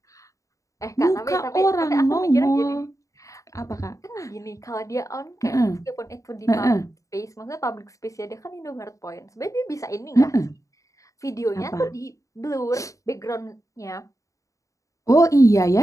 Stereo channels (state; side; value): late; right; 0.16 ms